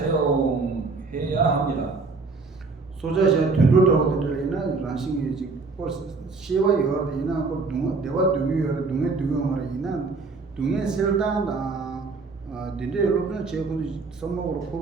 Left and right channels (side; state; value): left; quieter; 4.1 dB